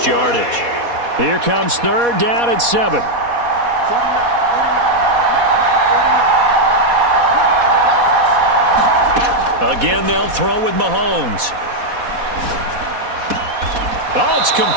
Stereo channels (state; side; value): late; left; 4.2 ms